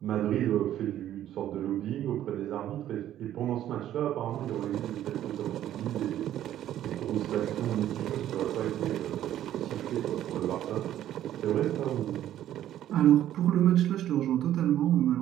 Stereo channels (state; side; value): quieter; left; 12.0 dB